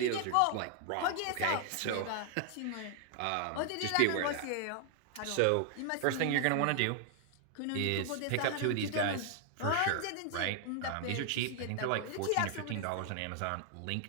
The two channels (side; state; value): both; different; correlation 0.00